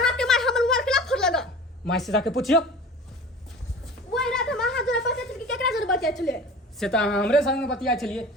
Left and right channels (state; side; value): normal; both; correlation 0.40